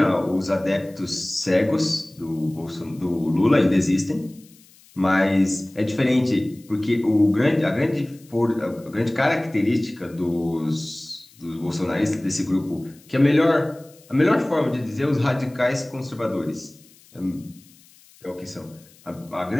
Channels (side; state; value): left; noise; hiss, 27 dB below the sound